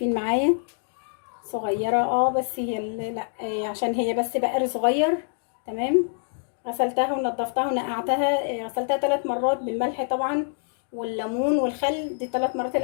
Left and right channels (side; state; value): right; silent; digital silence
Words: معايا، صغيرة بس هي لا عشان هي بس بقر صغير. تمام. غسلتها ونضفتها ونقعتها، غسلتها 3 مرات بالملح طبعا والليمون والخل، دي 3 مرات